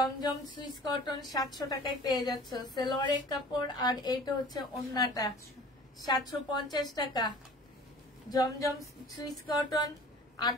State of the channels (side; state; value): both; normal; correlation 0.45